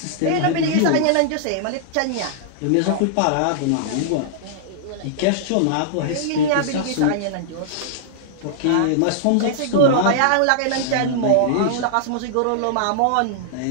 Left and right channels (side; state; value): both; different; correlation -0.01